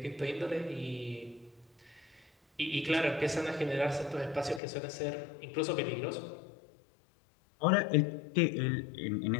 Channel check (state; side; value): drops out; right; at 4.6 s